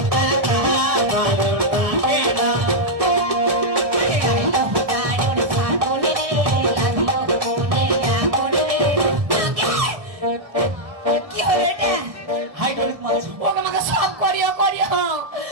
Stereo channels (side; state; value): left; late; 1.7 ms